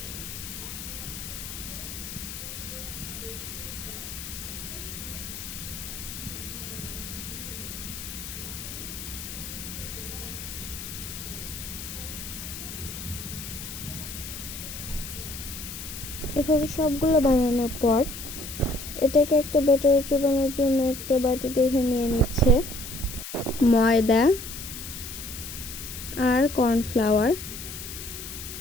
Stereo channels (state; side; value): noise; left; hiss, 9 dB below the sound